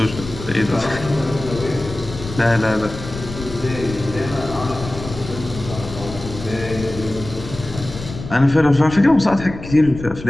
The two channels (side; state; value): left; noise; rumble, 11 dB below the sound